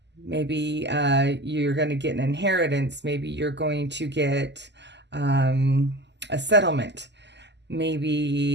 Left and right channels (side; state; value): left; late; 0.50 ms